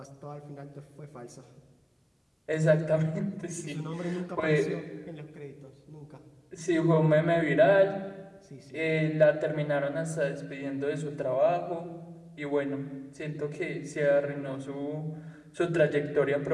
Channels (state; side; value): identical; both; correlation 1.00